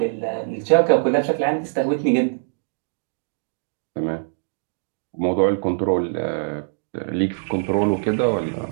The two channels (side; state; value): left; silent; digital silence